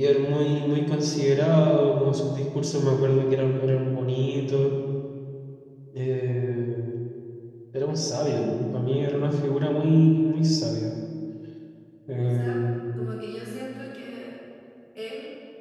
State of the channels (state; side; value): identical; both; correlation 1.00